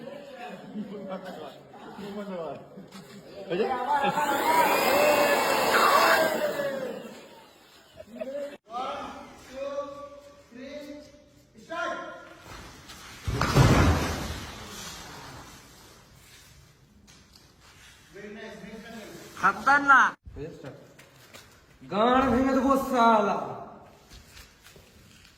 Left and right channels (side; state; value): both; identical; correlation 1.00